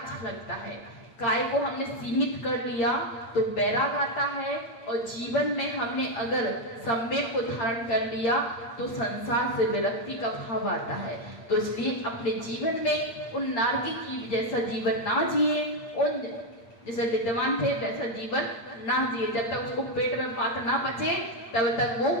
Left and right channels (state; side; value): late; right; 8.6 ms